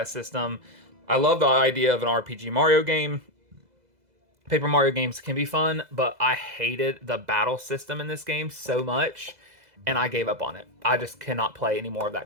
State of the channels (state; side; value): late; left; 2.0 ms